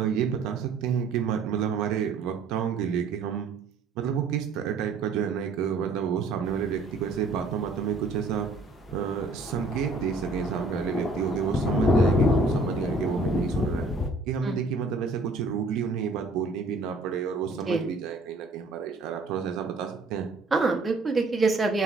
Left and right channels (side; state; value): left; quieter; 3.4 dB